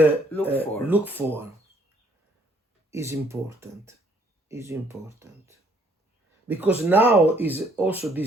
look for is important. Because now is also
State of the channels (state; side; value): normal; both; correlation 0.65